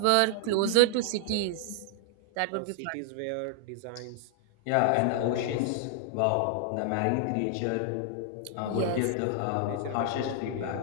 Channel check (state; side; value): different; both; correlation 0.00